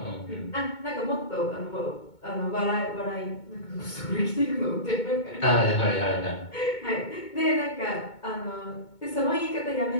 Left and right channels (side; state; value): right; late; 2.2 ms